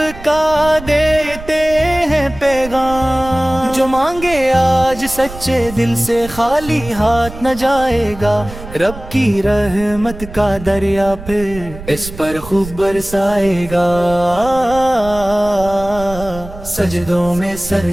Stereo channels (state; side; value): noise; right; rumble, 14 dB below the sound